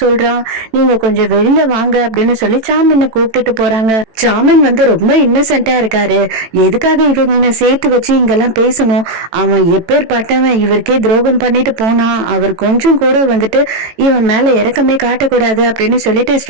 சொல்றான், நீங்க கொஞ்சம் வெளியில வாங்க அப்படின்னு சொல்லி சாமினை கூப்பிட்டுட்டு போறாங்க. சாமின் வந்து ரொம்ப இன்னசென்ட்டா இருக்காரு. எதுக்காக இவங்க சேர்த்து வச்சு இங்கெல்லாம் பேசணும், அவன் எப்பேற்பட்டவன், இவருக்கே துரோகம் பண்ணிட்டு போனான், அவர் கொஞ்சம் கூட வந்துட்டு இவன் மேல இறக்கமே காட்டக்கூடாது அப்படின்னு சொல்லிட்டு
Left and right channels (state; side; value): late; left; 18 ms